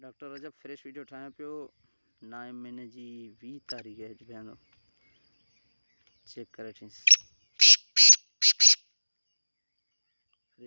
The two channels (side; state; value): both; inverted; correlation -1.00